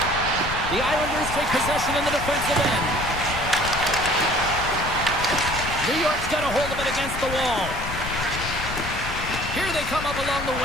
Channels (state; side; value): noise; left; rumble, 8 dB below the sound